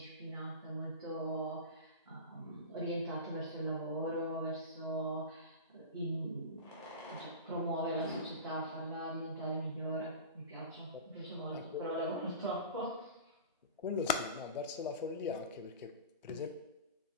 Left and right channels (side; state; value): both; inverted; correlation -0.31